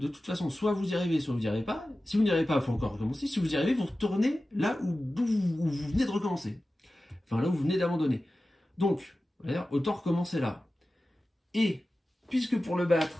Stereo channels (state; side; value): normal; both; correlation 0.95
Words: toute façon, soit vous y arrivez, soit vous n'y arrivez pas. Si vous n'y arrivez pas, il faut encore recommencer. Si vous y arrivez, vous retournez là où vous venez de recommencer. Enfin, là où vous venez d'abandonner. Donc, autant recommencer là. Et, puisque pour le